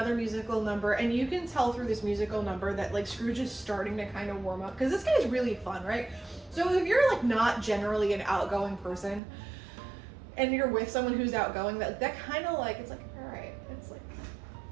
musical number, and you can tell through this musical number that like Scrooge is starting to kind of warm up, because this guy's really fun, right? So if you're like not generally an outgoing person and you're with someone who's outgoing, that kind of like, it's like, all right, it's like,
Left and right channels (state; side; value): drops out; left; at 9.2 s